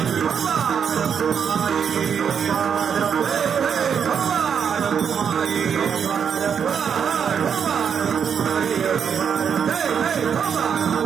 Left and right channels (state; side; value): quieter; left; 7.3 dB